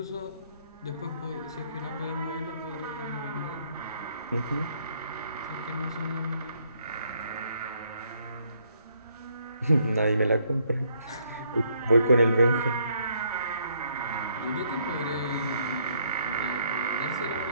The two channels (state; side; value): inverted; both; correlation -0.69